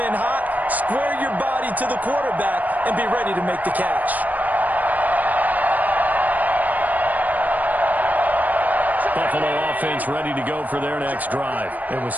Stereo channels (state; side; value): late; left; 0.079 ms